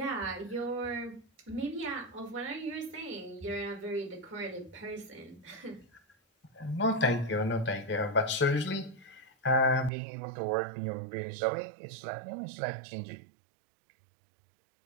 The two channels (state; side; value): drops out; left; at 9.9 s